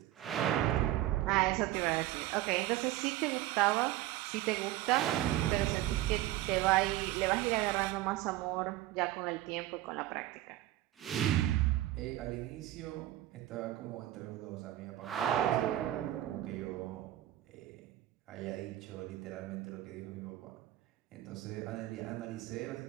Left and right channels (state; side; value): quieter; left; 15.1 dB